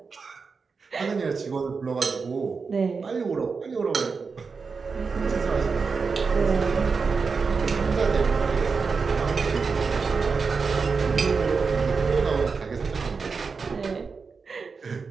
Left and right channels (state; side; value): quieter; left; 5.0 dB